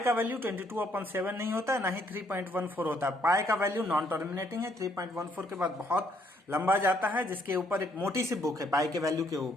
वैल्यू 22/7 नहीं होता है, ना ही 3.14 होता है। पाई का वैल्यू नॉन टर्मिनेटिंग है, 3.14 के बाद बहुत लंबा जाता है, जिसके ऊपर एक मोटी सी बुक है पाई के वैल्यू के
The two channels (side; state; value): both; normal; correlation 0.68